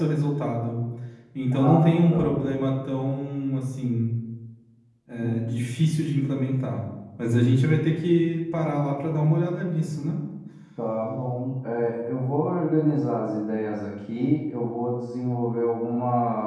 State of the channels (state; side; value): identical; both; correlation 1.00